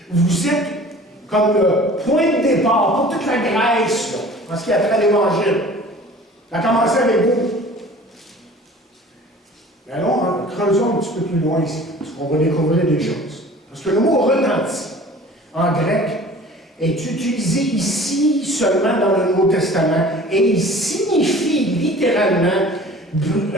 Vous êtes comme le point de départ pour toute la Grèce, là, en ce qui a trait à l'Évangile. Ça a commencé avec vous. Mais allons, creusons un petit peu plus loin ici, parce qu'on va découvrir des choses. Parce que le mot retenti, en grec, est utilisé ici seulement dans le Nouveau Testament, et il signifie littéralement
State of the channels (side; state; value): both; normal; correlation 0.46